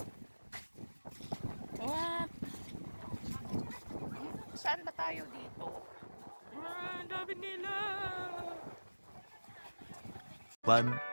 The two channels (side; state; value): both; inverted; correlation -1.00